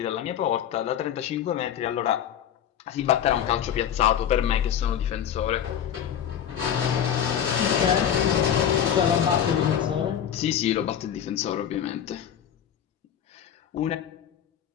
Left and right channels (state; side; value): quieter; right; 9.4 dB